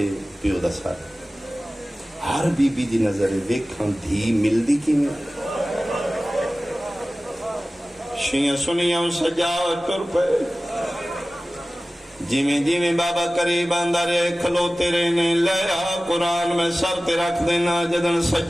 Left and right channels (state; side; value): normal; both; correlation 0.97